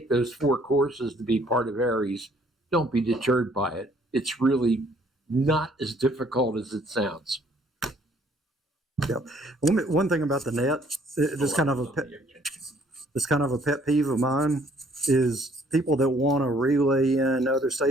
those 4 courses to be part of Aries, don't be deterred by it. It's really not as difficult as it sounds. One thing about the net, this kind of a pet peeve of mine is people that want to relay in other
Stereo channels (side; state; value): both; normal; correlation 0.62